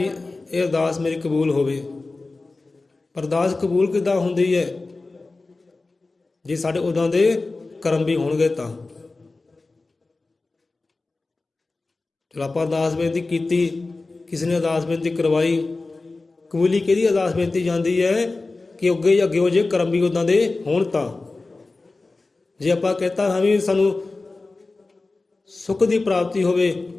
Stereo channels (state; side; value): quieter; right; 3.4 dB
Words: ਇਹ ਅਰਦਾਸ ਮੇਰੀ ਕਬੂਲ ਹੋਵੇ। ਅਰਦਾਸ ਕਬੂਲ ਕਿੱਦਾਂ ਹੁੰਦੀ ਹੈ? ਜੇ ਸਾਡੇ ਉਦਾਂ ਦੇ ਕਰਮ ਵੀ ਹੋਣਗੇ ਤਾਂ। ਚਲੋ ਆਪਾਂ ਅਰਦਾਸ ਬੇਨਤੀ ਕੀਤੀ, ਕਿਸੇ ਨੇ ਅਰਦਾਸ ਬੇਨਤੀ ਕਰਵਾਈ, ਕਬੂਲੀ ਕਿਹਦੀ ਅਰਦਾਸ ਬੇਨਤੀ ਜਾਂਦੀ ਹੈ? ਕਿ ਅੱਗੇ ਹੋ ਜੇ ਕਰਮ ਵੀ ਉਦਾਂ ਦੇ ਹੋਣ ਤਾਂ। ਜੇ ਆਪਾਂ ਕਹਤਾ ਹਾਂ ਵੀ ਸਾਨੂੰ ਸੁੱਖ ਦੀ ਪ੍ਰਾਪਤੀ ਹੋਵੇ,